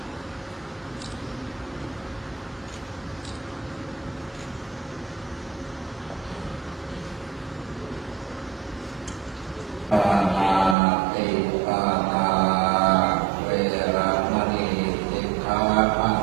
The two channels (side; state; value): left; drops out; at 10.8 s